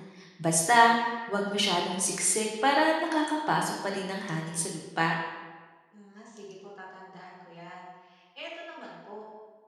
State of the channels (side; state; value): both; identical; correlation 1.00